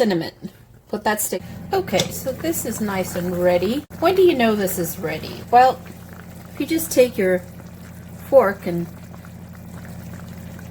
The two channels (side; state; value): both; identical; correlation 1.00